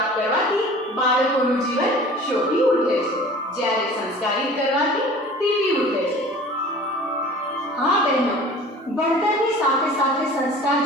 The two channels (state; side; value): normal; both; correlation 0.44